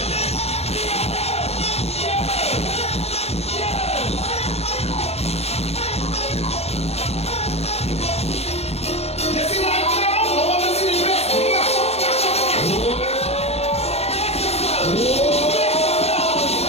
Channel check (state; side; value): late; right; 0.30 ms